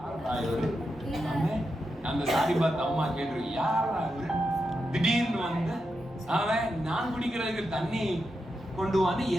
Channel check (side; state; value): both; normal; correlation 0.87